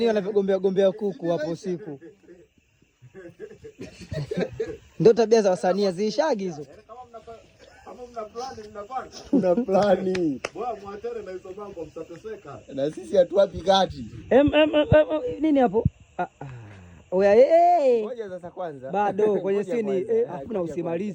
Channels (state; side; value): identical; both; correlation 1.00